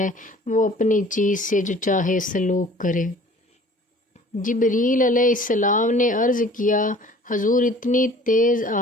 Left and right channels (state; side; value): normal; both; correlation 0.50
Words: وہ اپنی چیز سے جو چاہے سلوک کرے۔ جبریل علیہ السلام نے عرض کیا، حضور اتنی تیز